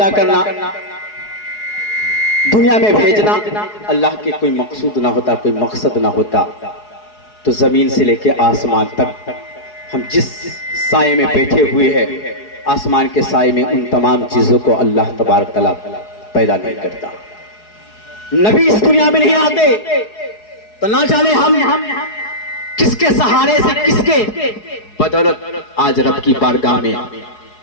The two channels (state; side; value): late; right; 4.7 ms